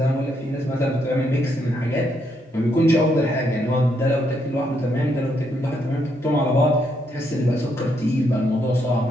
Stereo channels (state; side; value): normal; both; correlation 0.76